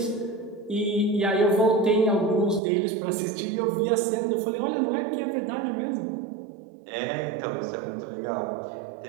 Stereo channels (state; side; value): drops out; left; at 2.6 s